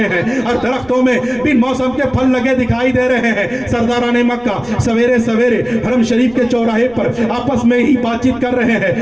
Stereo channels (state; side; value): noise; right; rumble, 24 dB below the sound